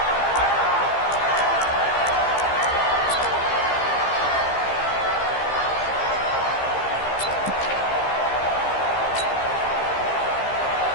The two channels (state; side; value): late; right; 15 ms